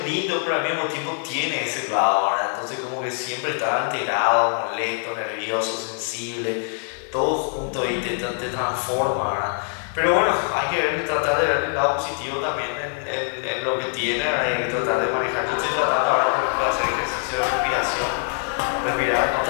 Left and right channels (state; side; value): silent; right; 57 dB below the other